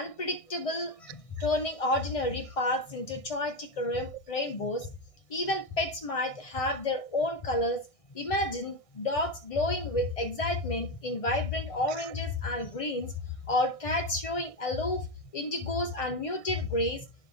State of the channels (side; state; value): right; late; 1.6 ms